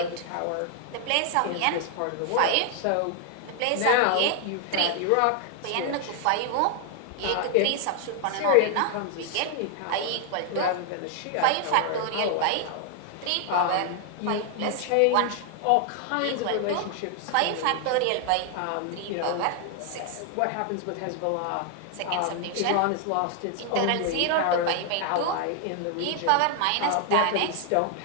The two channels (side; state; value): both; different; correlation 0.00